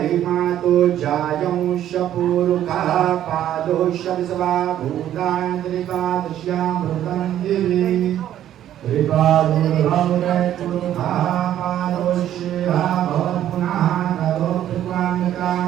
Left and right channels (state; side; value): quieter; left; 11.5 dB